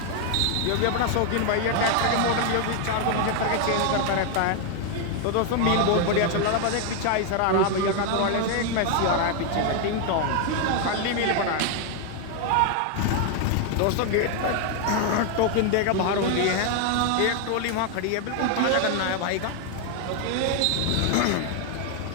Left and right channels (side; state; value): both; different; correlation 0.00